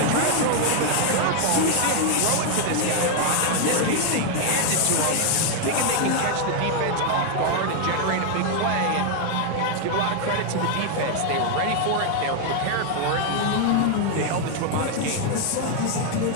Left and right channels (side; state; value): both; different; correlation 0.01